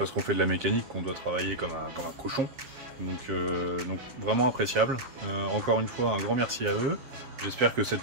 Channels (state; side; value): late; left; 7.4 ms